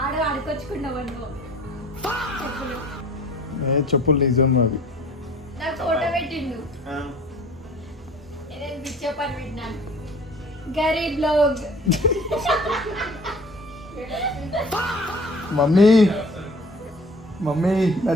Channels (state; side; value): normal; both; correlation 0.48